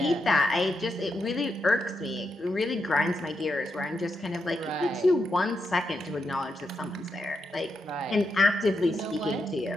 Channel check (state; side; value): normal; both; correlation 0.84